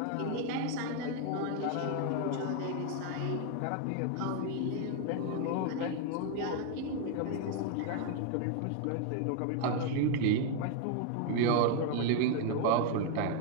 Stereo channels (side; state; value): both; different; correlation 0.00